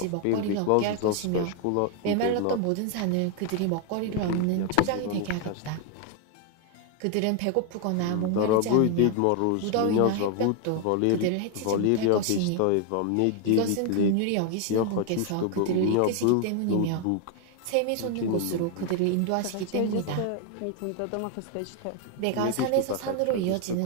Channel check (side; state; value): both; different; correlation 0.01